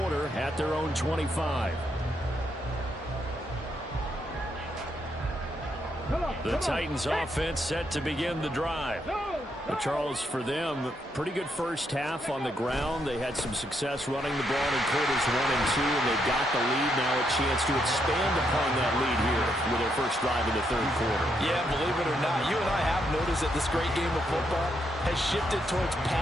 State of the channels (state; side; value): normal; both; correlation 0.78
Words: at their own 25. The Titans offense set to begin the drive. But Charles, for them, pretty good first half on the ground. They had some success running the ball in quarters 1 and 2, and they got the lead. Now a chance to expand upon that lead here with their first drive in the third quarter. Yeah, believe it or not, you and I have noticed that this great game of football has shifted towards